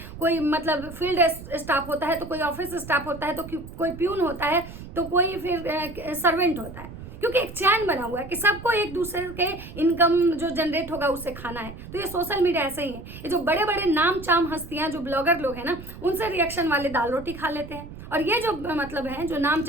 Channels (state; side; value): noise; right; rumble, 13 dB below the sound